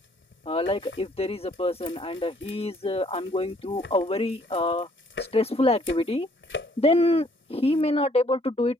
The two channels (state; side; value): normal; both; correlation 0.63